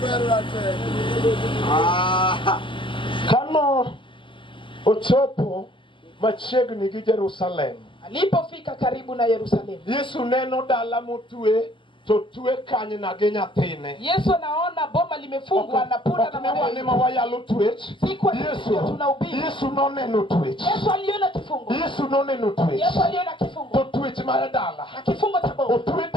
berra te. Kano ochopo machiegni gi Jerusalem. Alipofika karibu na Yerusalemu. Yesu neno dala motwe to twe kanyna gi nyathine. Yesu anaona boma limefungwa na punda na mawa. Ni mawayalo twech. Yesu noneno twech. Yesu aliona kifungo. Yesu noneno twech. Yesu aliona kifungo. To twech mar dala. Na kifungo cha boma. Otwe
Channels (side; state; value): right; late; 0.25 ms